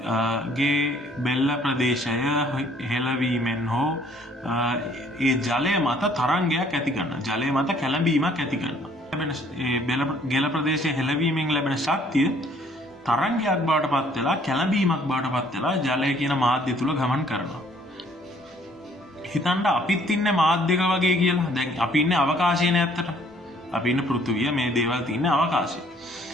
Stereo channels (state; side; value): normal; both; correlation 0.61